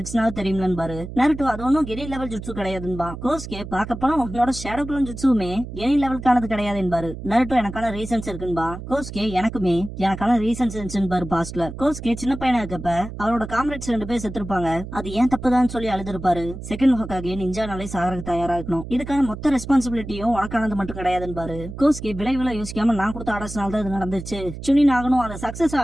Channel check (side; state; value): right; noise; hum, 10 dB below the sound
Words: தெரியும்லன்னு பாரு. நருட்டோ அது ஒன்னும் கெனி லெவல் ஜுட்சு கிடையாதுன்பா. கோஸ்கே பார்க்க போனா உன்னோட ஷேடோ க்ளோன் ஜுட்சுமே கெனி லெவலுக்கானது கிடையாது என்பாரு. நருட்டோ எனக்கான ரீசன்ஸ் இருக்குன்பா. கோஸ்கே எனக்குமே எனக்கான ரீசன்ஸ் இருந்துச்சுன்னு பாஸ்ட்ல. கோஸ்கே சின்ன பையனா இருக்கப்ப அவரோட காம்ரேட்ஸ் 2 பேர் செத்துருப்பாங்க, அது ஏன் தப்புதான் சொல்லி அழுதுருப்பாரு. செகண்ட் ஹொகாகே நிஞ்சானாலே சாகறதுக்கு தயாரா இருக்கணும், இதுக்கான மொத்த ரெஸ்பான்சிபிலிட்டியும் உனக்கானது மட்டும் கிடையாதுன்னு பாரு. கோஸ்கே விளைவுல யோசிக்காம நான் கொடுத்த ஆர்டர்ஸ்னால தான் இது நடந்துச்சு, சுனின் ஆகணும், அந்த சக்சஸ்